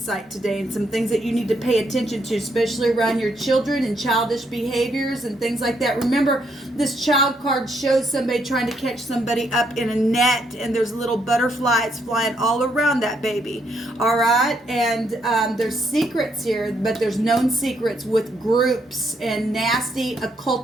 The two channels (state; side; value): normal; both; correlation 0.74